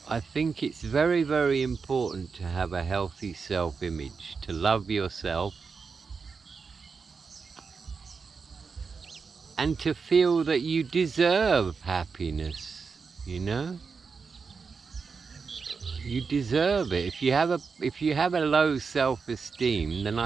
I think it's very, very important to have a healthy self-image, to love yourself, and to feel that you deserve happiness, you know? You deserve it. If you have a low self-esteem, then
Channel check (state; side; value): quieter; left; 5.2 dB